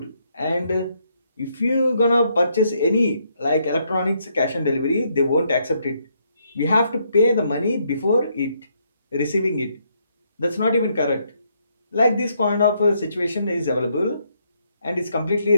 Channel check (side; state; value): both; inverted; correlation -0.74